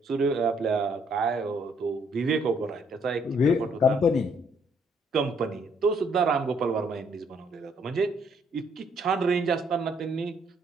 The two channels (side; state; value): both; normal; correlation 0.67